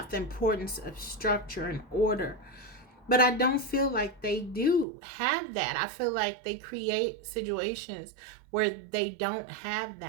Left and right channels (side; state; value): left; drops out; at 4.9 s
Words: the importance of structure and order. But I don't feel like they do have that. I feel like they create situations where they don't have